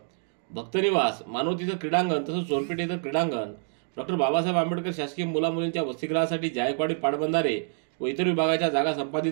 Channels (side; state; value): left; silent; 60 dB below the other